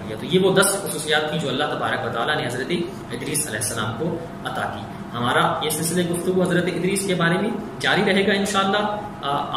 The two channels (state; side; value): identical; both; correlation 1.00